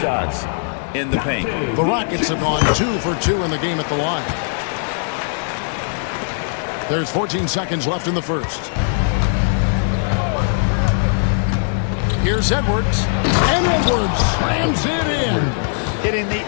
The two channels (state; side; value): silent; right; 58 dB below the other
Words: shots in the paint. The Rockets have gone 2 for 2 in the game at the line. There's 14 seconds left in the first. Here's Edwards. And Edwards slams it in. Hitting the